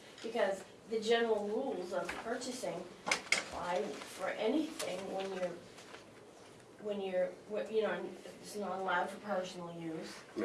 because the general rules of purchasing apply for anything when you're it's not allowed for personal use.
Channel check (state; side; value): identical; both; correlation 1.00